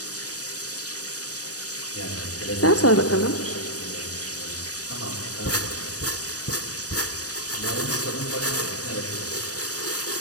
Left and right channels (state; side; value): late; right; 0.67 ms